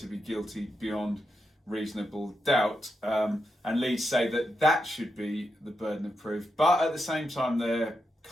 be guilty beyond reasonable doubt. And Leeds say that should be the burden of proof. But at the same time, they're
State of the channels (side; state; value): both; normal; correlation 0.85